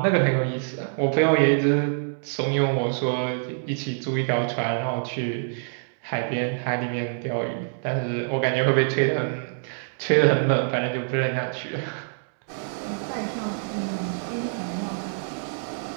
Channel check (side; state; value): left; silent; digital silence